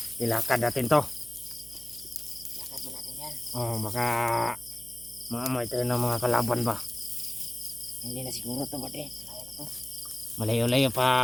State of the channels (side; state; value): right; noise; hum, 20 dB below the sound